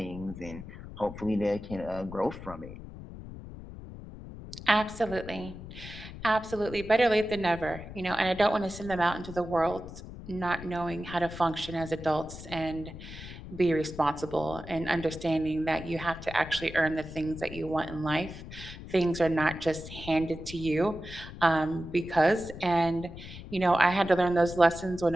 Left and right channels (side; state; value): left; noise; rumble, 13 dB below the sound